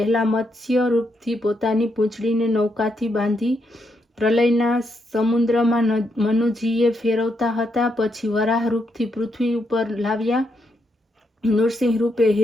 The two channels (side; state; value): both; normal; correlation 0.79